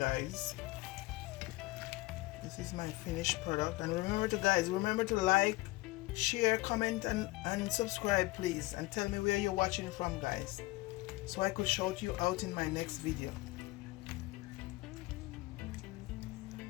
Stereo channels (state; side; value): quieter; right; 21.0 dB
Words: This is my finished product. And remember to like, share, comment, and subscribe, please, and tell me where you're watching from, guys, so I could shout you out in my next video.